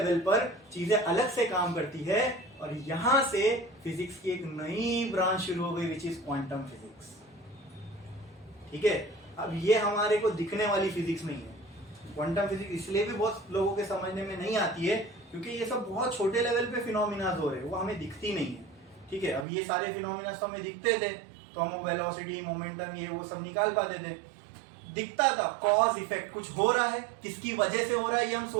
पर चीजें अलग से काम करती है, और यहां से फिजिक्स की एक नई ब्रांच शुरू हो गई, विच इज क्वांटम फिजिक्स। ठीक है, अब ये हमारे को दिखने वाली फिजिक्स नहीं है। क्वांटम फिजिक्स इसलिए भी बहुत लोगों के समझने में नहीं आती है क्योंकि ये सब बहुत छोटे लेवल पे फिनोमिना हो रहे हैं, वो हमें दिखती नहीं है। ठीक है, अब ये सारे फिनोमिना तो हमें दिखते थे, तो हम वेलोसिटी, मोमेंटम, ये वो सब निकाल पाते थे, दिखता था। कॉज इफेक्ट, कुछ हो रहा है, किसकी वजह से हो रहा है, ये हम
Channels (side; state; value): left; drops out; at 19.5 s